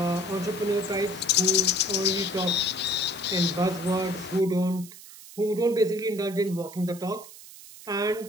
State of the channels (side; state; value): right; noise; hiss, 17 dB below the sound